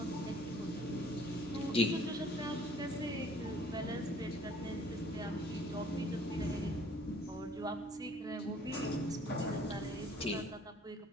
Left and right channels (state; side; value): normal; both; correlation 0.57